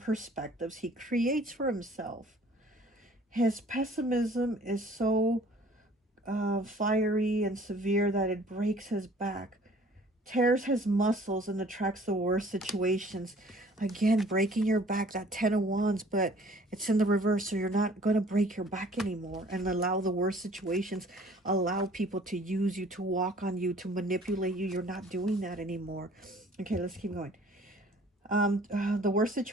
he creates for himself. His pessimism is so fiery and severe that it breaks his back, tears his muscles, and attracts the worst situations. Again, breaking your back, that 10 of Wands, but it's in the reverse, so you're not going to break your back anymore and allow the worst situations, allow people to use you, to walk on you, to manipulate you. You're not doing that anymore. Okay, let's keep going. The worst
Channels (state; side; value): normal; both; correlation 0.53